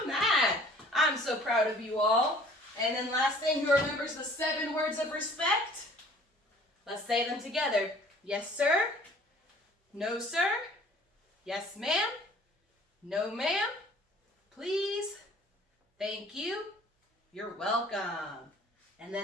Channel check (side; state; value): both; normal; correlation 0.52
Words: that. I'm so proud of you all. And then last thing, who remembers the 7 words of respect? Let's say them together. Yes, sir. No, sir. Yes, ma'am. No, ma'am. Please. Thank you. You're welcome. And